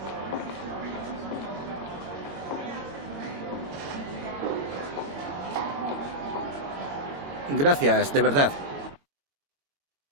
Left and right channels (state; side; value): late; left; 21 ms